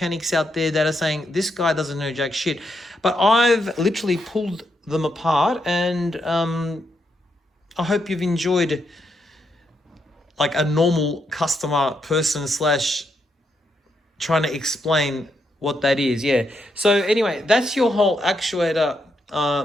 out there that are saying this guy doesn't know jack shit, but I've literally pulled them apart, and I hope you've enjoyed like a normal customer person slash trying to explain what that is. Yeah, so anyway, that's your whole actuator,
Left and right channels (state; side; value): normal; both; correlation 0.80